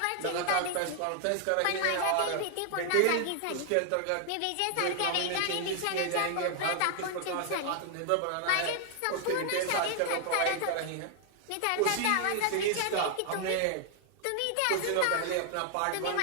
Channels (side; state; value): both; different; correlation 0.00